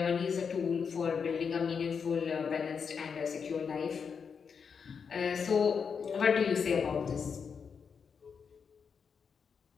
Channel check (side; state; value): right; quieter; 6.2 dB